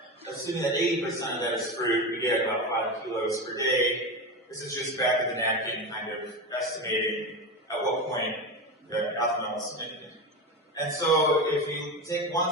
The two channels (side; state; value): both; normal; correlation 0.20